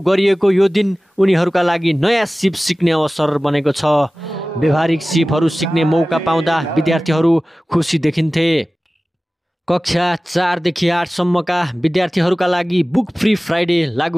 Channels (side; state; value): both; normal; correlation 0.97